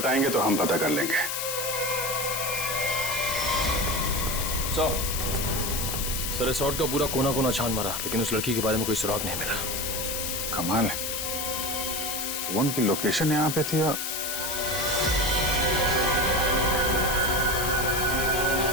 तो हम पता कर लेंगे। सर रिसोर्ट का पूरा कोना कोना छान मारा, लेकिन उस लड़की के बारे में कोई सुराग नहीं मिला। कमाल है, फोन की लोकेशन यहाँ पे थी और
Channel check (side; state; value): left; noise; hiss, 2 dB below the sound